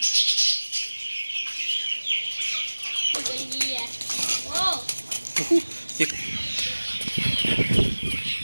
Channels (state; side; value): inverted; both; correlation -1.00